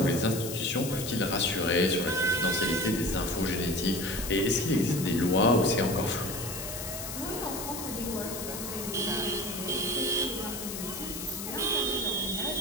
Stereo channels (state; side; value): noise; left; hiss, 7 dB below the sound